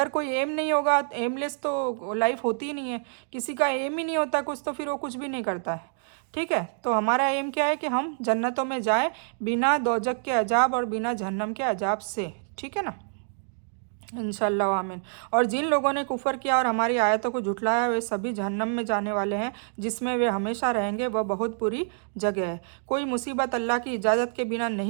कोई एम नहीं होगा, एमलेस तो लाइफ होती ही नहीं है, किसी का एम ही नहीं होता कुछ, तो फिर वो कुछ भी नहीं करता है, ठीक है। तो हमारा एम क्या है कि हम जन्नतों में जाएं बिना दोजक के अजाब और बिना जहन्नम के अजाब से, ठीक है ना, इंशाल्लाह आमीन। और जिन लोगों ने कुफर किया और हमारी आयतों को झुठलाया, वे सभी जहन्नम में जाने वाले हैं, जिसमें वे हमेशा रहेंगे, वह बहुत बुरी जगह है। कोई मुसीबत अल्लाह की इजाज़त के बिना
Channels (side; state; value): left; silent; digital silence